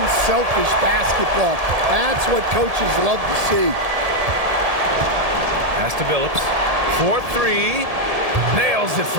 basketball. That's what coaches love to see. Pass to Billups. 4-3. Nails it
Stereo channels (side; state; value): left; late; 1.7 ms